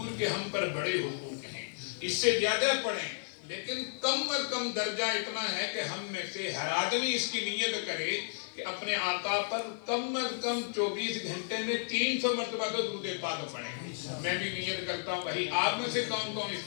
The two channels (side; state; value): right; silent; 56 dB below the other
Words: کے ہم پر بڑے حقوق ہیں، اس سے زیادہ پڑھیں، لیکن کم از کم درجہ اتنا ہے کہ ہم میں سے ہر آدمی اس کی نیت کرے کہ اپنے آقا پر کم از کم 24 گھنٹے میں 300 مرتبہ تو درود پاک پڑھیں۔ میں بھی نیت کرتا ہوں، بھائی آپ میں سے کون کون اس